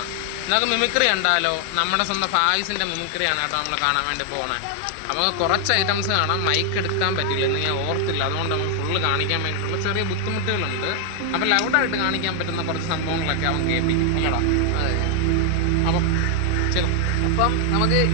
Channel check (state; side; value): different; both; correlation 0.00